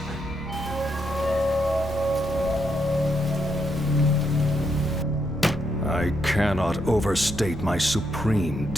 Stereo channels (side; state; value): both; normal; correlation 0.78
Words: I cannot overstate my supreme